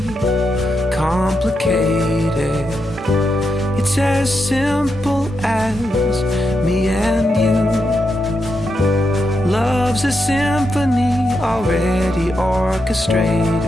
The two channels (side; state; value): both; normal; correlation 0.84